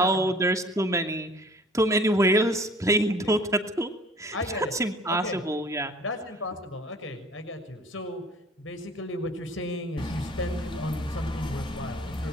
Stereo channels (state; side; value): normal; both; correlation 0.50